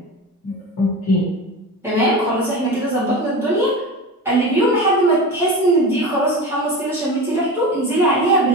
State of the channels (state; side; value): normal; both; correlation 0.28